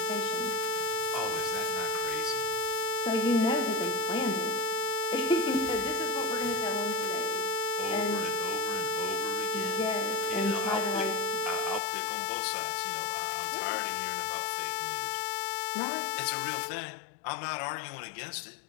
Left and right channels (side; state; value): right; drops out; at 11.8 s